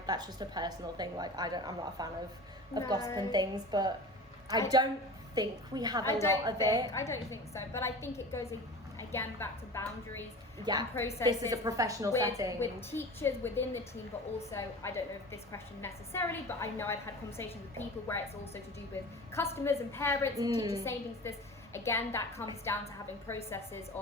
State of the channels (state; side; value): normal; both; correlation 0.35